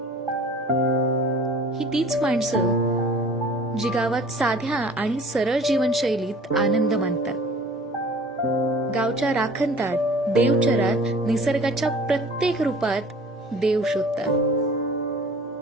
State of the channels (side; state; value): both; normal; correlation 0.47